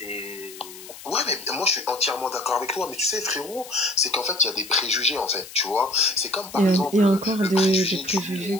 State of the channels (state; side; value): noise; left; hiss, 16 dB below the sound